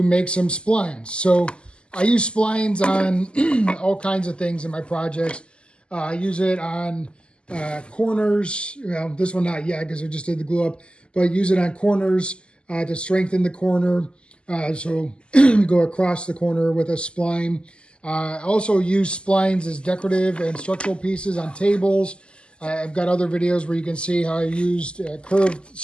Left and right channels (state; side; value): late; right; 0.051 ms